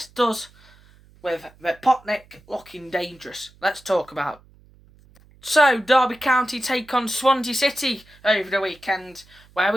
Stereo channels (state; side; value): noise; right; hum, 27 dB below the sound